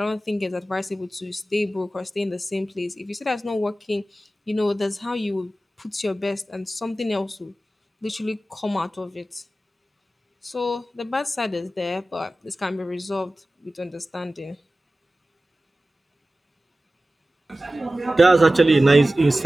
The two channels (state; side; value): normal; both; correlation 0.95